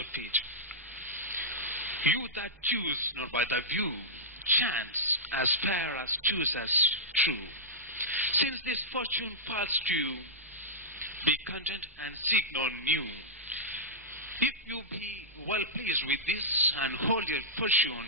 You that choose not by the view, chance as fair as choose as true. Since this fortune falls to you, be content and seek no new. If you be well pleased with this, and hold your fortune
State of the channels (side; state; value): both; normal; correlation -0.11